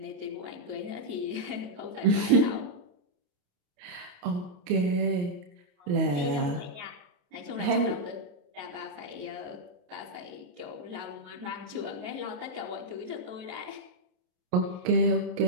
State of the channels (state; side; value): late; left; 28 ms